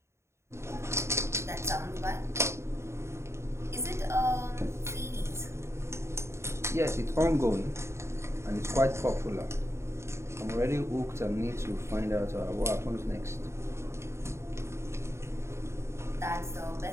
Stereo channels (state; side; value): late; left; 0.13 ms